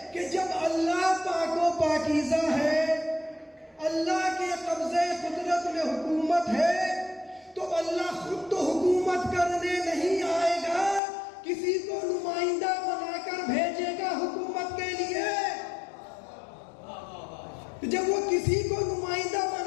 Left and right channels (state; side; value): drops out; right; at 11.0 s